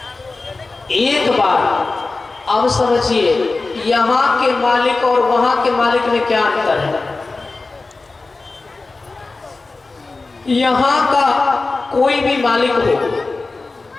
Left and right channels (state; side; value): quieter; right; 3.6 dB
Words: एक बार अब समझिए, यहाँ के मालिक और वहां के मालिक में क्या अंतर है? यहाँ का कोई भी मालिक हो,